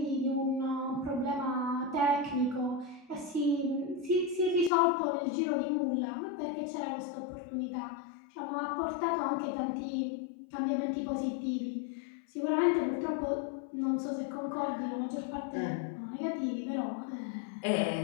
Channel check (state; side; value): drops out; right; at 4.7 s